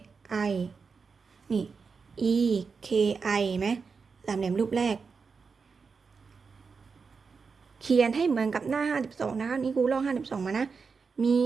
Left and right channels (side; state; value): left; quieter; 5.2 dB